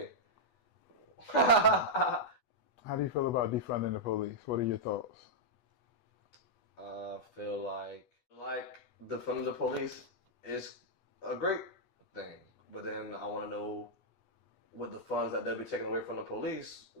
How do you feel about defunding the police? What are your thoughts? I feel like defunding the police is a great thing, but then I want to know, with the funds that they'll be taking away from the police,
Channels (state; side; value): late; right; 8.2 ms